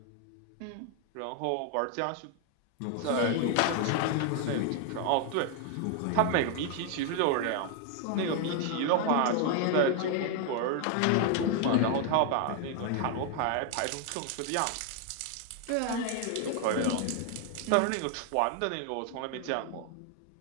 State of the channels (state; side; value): different; both; correlation 0.00